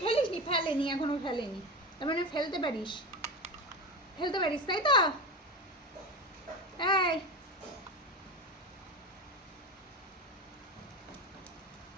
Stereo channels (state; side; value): normal; both; correlation 0.23